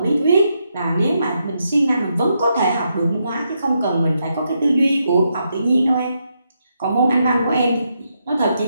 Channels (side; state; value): both; inverted; correlation -0.81